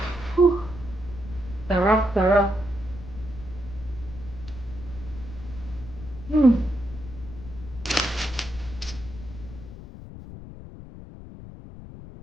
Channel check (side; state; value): left; noise; rumble, 13 dB below the sound